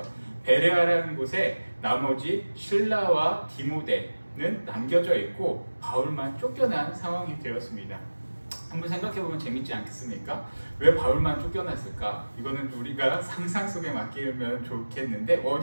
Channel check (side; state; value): both; inverted; correlation -1.00